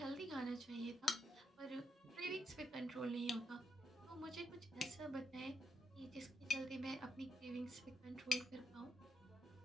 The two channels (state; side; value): normal; both; correlation 0.79